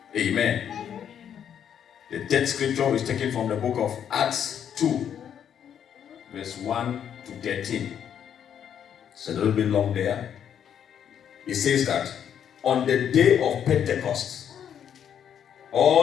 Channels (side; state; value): right; quieter; 8.9 dB